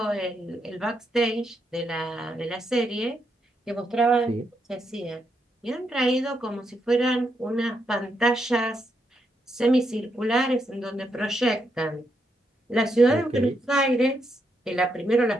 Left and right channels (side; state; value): both; normal; correlation 0.80